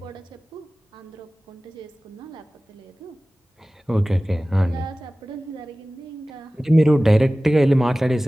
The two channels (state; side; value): normal; both; correlation 0.97